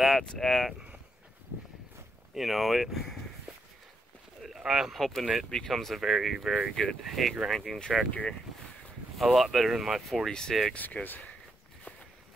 at. I'm hoping it becomes a very, very good hay grinding tractor. A lot better than my 46, because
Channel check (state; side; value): normal; both; correlation 0.80